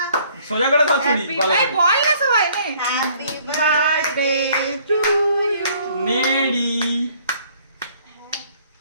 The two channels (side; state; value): both; inverted; correlation -0.60